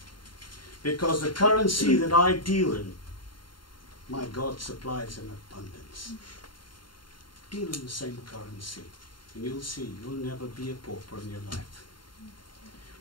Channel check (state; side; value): late; right; 0.72 ms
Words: Because the currency that I deal in, my God supplies in abundance. Deal in the same currency, and you'll see you'll never be a pauper in your life.